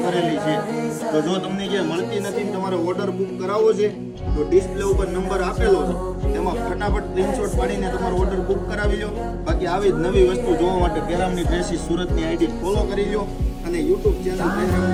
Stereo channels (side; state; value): both; identical; correlation 1.00